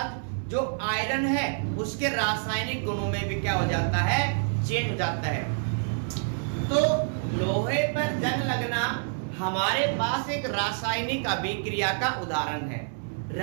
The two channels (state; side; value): silent; left; digital silence